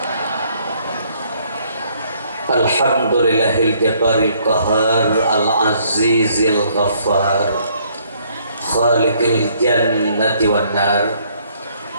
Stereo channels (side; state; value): both; inverted; correlation -0.65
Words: Alhamdulillahil jabbaril qahar al-azizil ghaffar khaliqil jannati wan nar.